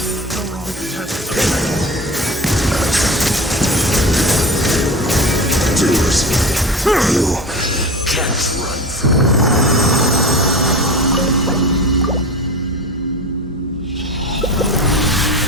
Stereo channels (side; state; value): both; normal; correlation 0.31